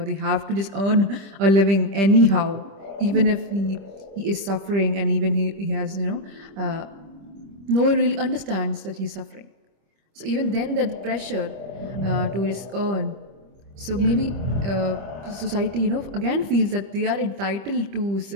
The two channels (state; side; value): late; left; 25 ms